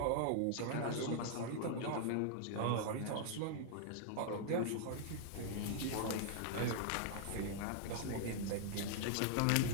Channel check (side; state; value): both; different; correlation -0.01